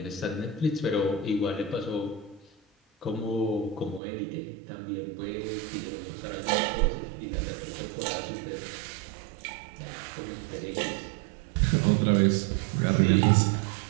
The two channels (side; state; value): left; drops out; at 4.0 s